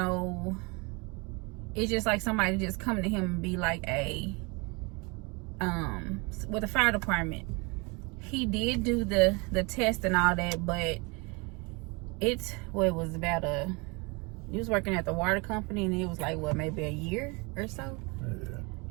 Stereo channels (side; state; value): left; quieter; 29.0 dB